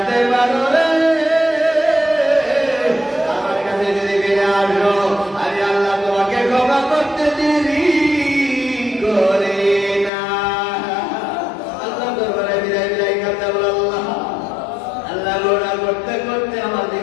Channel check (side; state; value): right; drops out; at 10.1 s